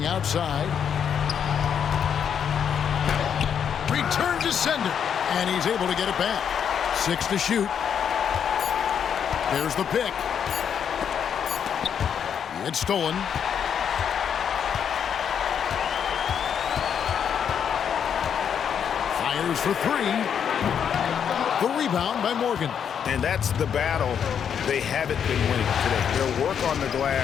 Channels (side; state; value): right; quieter; 8.0 dB